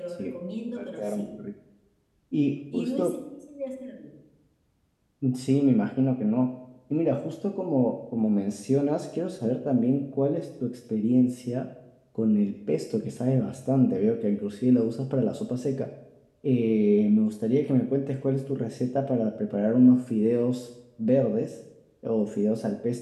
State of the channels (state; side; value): identical; both; correlation 1.00